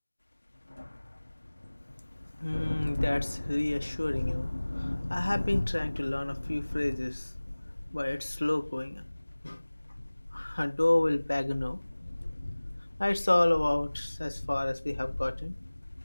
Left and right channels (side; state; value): both; inverted; correlation -1.00